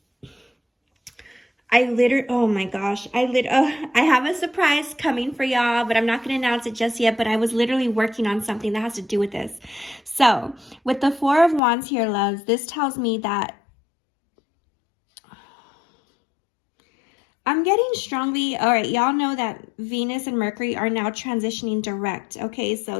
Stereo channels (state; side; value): drops out; right; at 11.6 s